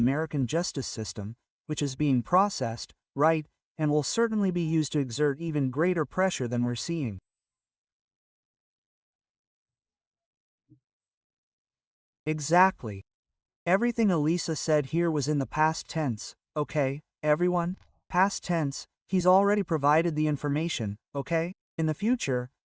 justice system, which is being processed, right, and will certainly be used to exert even greater pressure than we're seeing. Exactly. Everything Elisa said here was in the past tense, okay, everyone? Past tense, he's already provided the information, okay? In the future,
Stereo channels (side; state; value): both; identical; correlation 1.00